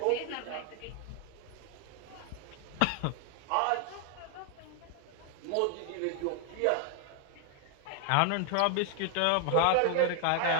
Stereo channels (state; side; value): different; both; correlation 0.00